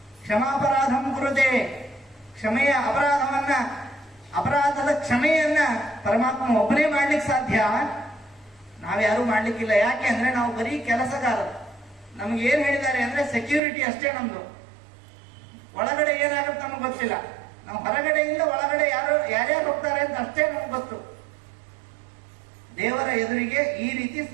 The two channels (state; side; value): drops out; left; at 13.6 s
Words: ಕ್ಷಮಾಪರಾಧಂ ಕುರುತೆ. ಕ್ಷಮೆಯ ಅಪರಾಧದ ಕ್ಷಮೆಯನ್ನ ಪರಮಾತ್ಮ ಒಬ್ಬನೇ ಮಾಡ್ಲಿಕ್ಕೆ ಸಾಧ್ಯ, ನಾವ್ಯಾರು ಮಾಡ್ಲಿಕ್ಕಿಲ್ಲ. ಯಾಕೆ ಅಂದ್ರೆ ನಾವು ಬರೀ ಕೆಲಸಗಾರರು. ನಮ್ಗೆ ಏನ್ ಹೇಳಿದ್ದಾರೆ ಅಂದ್ರೆ ಸೆಕ್ಯೂರಿಟಿ ಅಷ್ಟೇ ನಮ್ದು. ಒಳಗಡೆ ಏನಾಗುತ್ತೆ ನಮ್ಗೆ ಗೊತ್ತಿಲ್ಲ. ನಾವು ಹೊರಗಡೆಯಿಂದ ಒಳಗಡೆ ಯಾರ್ಯಾರು ಹೋಗ್ತಾರೆ ಅಂತ ಅಷ್ಟೇ ನಮ್ಗೆ ಗೊತ್ತು. ದೇವರ ಎದುರಿಗೆ ಈ ರೀತಿ